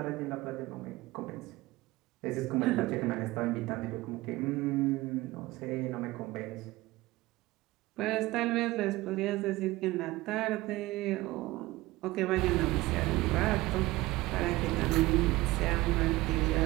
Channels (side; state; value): left; quieter; 19.3 dB